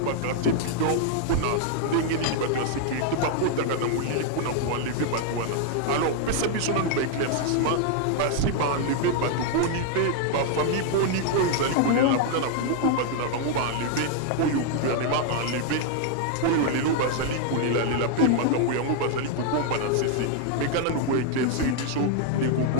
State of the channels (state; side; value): different; both; correlation 0.00